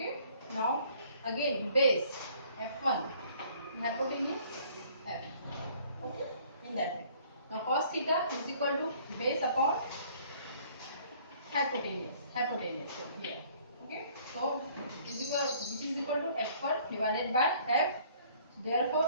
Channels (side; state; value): both; inverted; correlation -0.58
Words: now again base F1, hypotenuse F. Okay, in that way. Now cos theta is equal to base upon hypotenuse here. Okay, so which is equal to F1 divided by F. Therefore